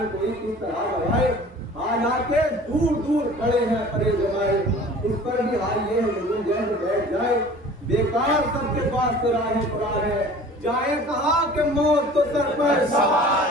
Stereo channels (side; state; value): both; normal; correlation 0.45